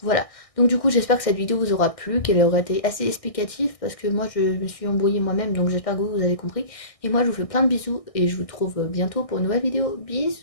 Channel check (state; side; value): late; right; 1.6 ms